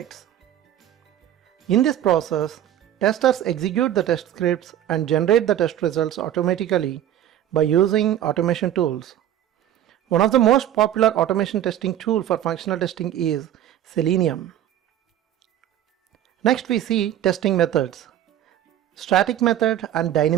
In this process, testers execute the test scripts and generate the test results automatically by using automation tools. One of the most popular automation testing tool for functional testing is Selenium. Next we see testing methods. Static method and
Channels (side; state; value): left; quieter; 11.4 dB